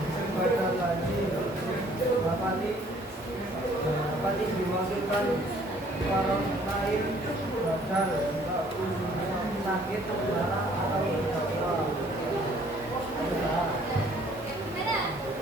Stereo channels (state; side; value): normal; both; correlation 0.59